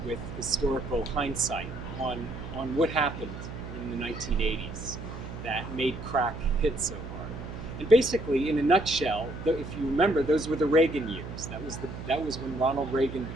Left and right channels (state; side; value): noise; right; hum, 10 dB below the sound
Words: with historical hindsight on what happened in the 1980s that made crack hit so hard. And basically, in a nutshell, if you remember, those were the Reagan years. That was when Ronald Reagan